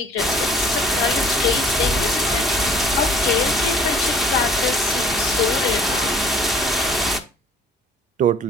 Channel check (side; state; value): both; normal; correlation 0.53